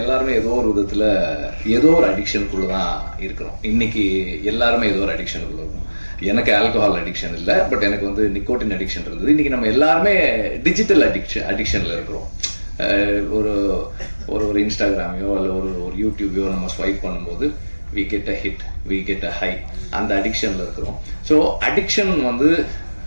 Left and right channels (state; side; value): inverted; both; correlation -1.00